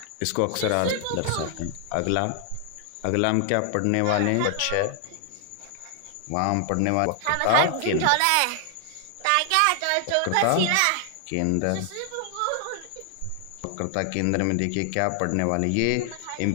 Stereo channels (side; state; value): both; different; correlation 0.00